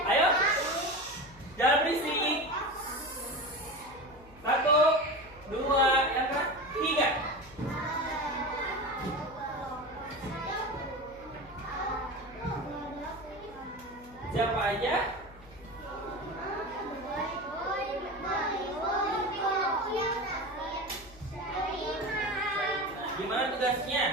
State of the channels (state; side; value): noise; left; hum, 22 dB below the sound